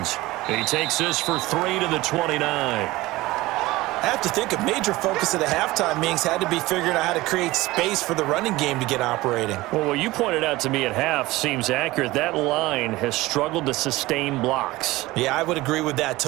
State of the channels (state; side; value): quieter; left; 19.1 dB